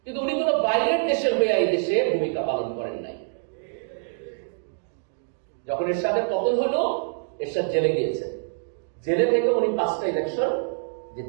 কিন্তু উনি কোন বাইরের দেশের হয়ে এই দেশে ভূমিকা পালন করেন নাই। যখন এরশাদের পতন হলো, এরশাদ জেলে গিয়েছেন, জেলে থেকে উনি 5টা ইলেকশন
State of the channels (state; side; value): silent; left; digital silence